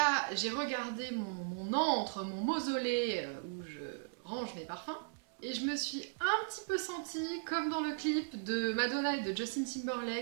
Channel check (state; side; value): silent; left; 53 dB below the other